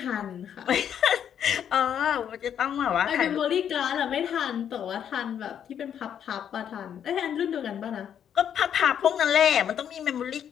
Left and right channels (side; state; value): right; quieter; 9.0 dB